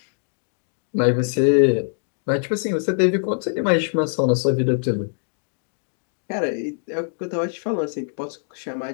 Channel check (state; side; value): silent; right; 63 dB below the other